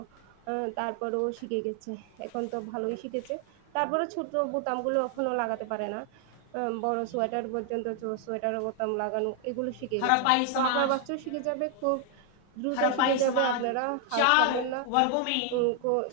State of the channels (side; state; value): both; different; correlation 0.00